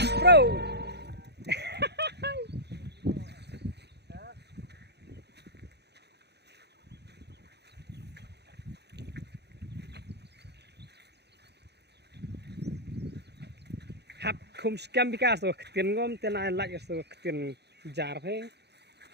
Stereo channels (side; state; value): left; late; 0.48 ms